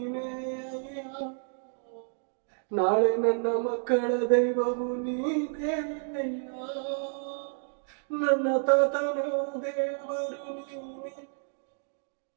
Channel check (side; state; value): left; silent; digital silence